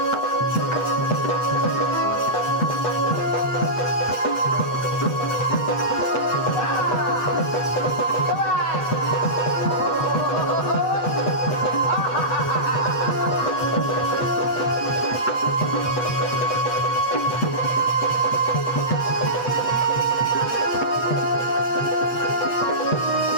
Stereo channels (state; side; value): late; right; 8.1 ms